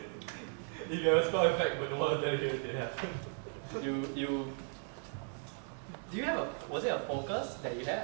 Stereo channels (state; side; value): silent; left; 54 dB below the other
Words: If you have a spell effect but no one there here, it didn't happen. You do you have a, was it a focus that you